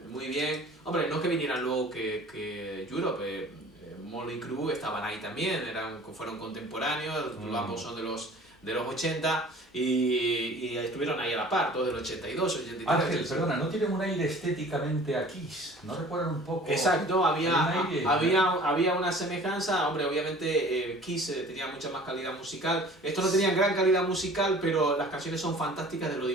muy bien. Hombre, no es que vinieran luego que Europe, Motley Crue estaban ahí también, fueron contemporáneos, ambos son de los 80 y estuvieron ahí a la par, todos del 82, 83. Ángel, perdona, ¿no tienen un aire estéticamente a Kiss? ¿No recuerdan un poco? Exacto, aire, había una semejanza. Hombre, obviamente Kiss tenía mucha más calidad musical. Estos no tenían gran calidad musical, pero las canciones son fantásticas de lo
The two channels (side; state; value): both; normal; correlation 0.47